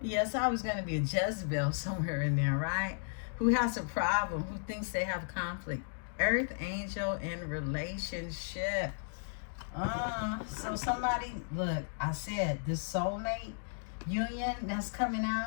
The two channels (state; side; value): silent; right; digital silence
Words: Yes, I was going to be a Jezebel somewhere in there, right? Who has a problem? Who thinks they have conflict? Earth angel in relationship. So somebody, look, I said this soulmate, union that's coming